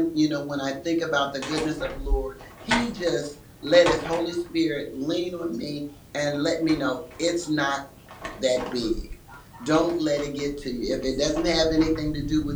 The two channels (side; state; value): both; identical; correlation 1.00